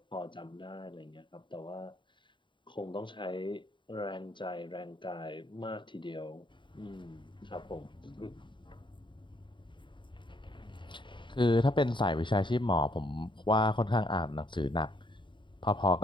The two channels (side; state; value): right; late; 0.23 ms